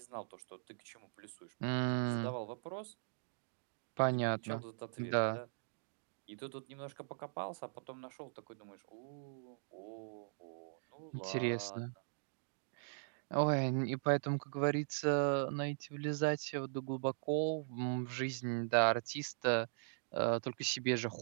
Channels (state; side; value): silent; left; digital silence